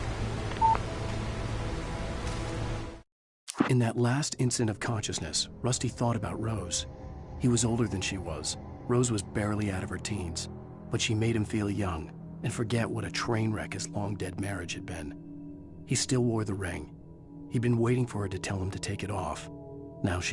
In that last instant of consciousness, Rusty thought about Rose. He was older than she was. Rose was barely out of her teens, but she made him feel young and forget what a train wreck his long-dead marriage had been. He still wore the ring. He'd been waiting for her to tell him to take it off. Now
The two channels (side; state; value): both; identical; correlation 1.00